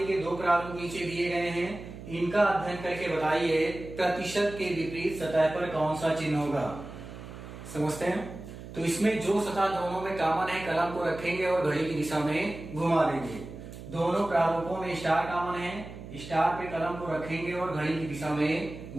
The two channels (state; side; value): noise; right; hum, 13 dB below the sound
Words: के 2 प्रारूप नीचे दिए गए हैं, इनका अध्ययन करके बताइए प्रतिशत के विपरीत सतह पर कौन सा चिन्ह होगा। समझते हैं। तो इसमें जो सतह दोनों में कॉमन है, कलम को रखेंगे और घड़ी की दिशा में घुमा देंगे। दोनों प्रारूपों में स्टार कॉमन है, स्टार पे कलम को रखेंगे और घड़ी की दिशा में